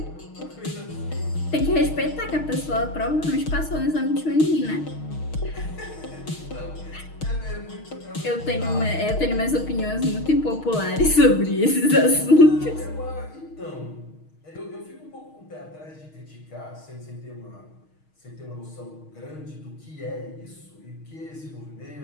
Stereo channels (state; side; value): late; right; 6.4 ms